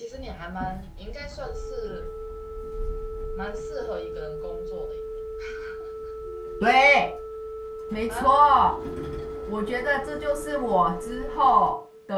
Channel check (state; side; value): identical; both; correlation 1.00